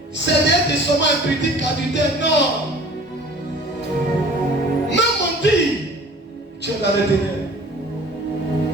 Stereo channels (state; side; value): normal; both; correlation 0.47